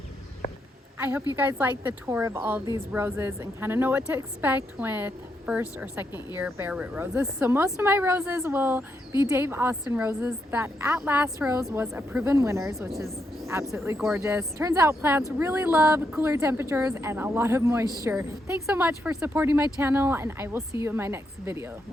I hope you guys like the tour of all of these roses and kind of know what to expect with first or second year bare root roses. So most of my roses will be Dave Austin roses. That At Last rose was a proven winners, which is absolutely gorgeous. Turns out plants really love cooler temperatures and a lot of moisture. Thanks so much for supporting my channel, and I will see you in my next video.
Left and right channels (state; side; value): normal; both; correlation 0.80